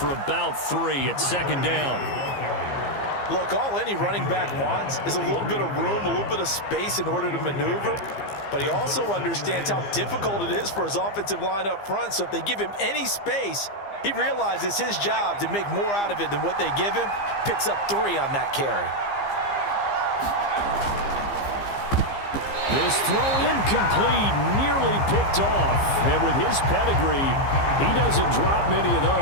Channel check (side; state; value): right; late; 15 ms